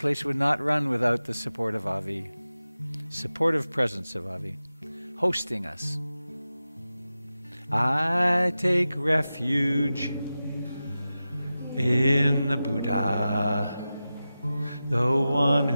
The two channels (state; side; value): inverted; both; correlation -0.94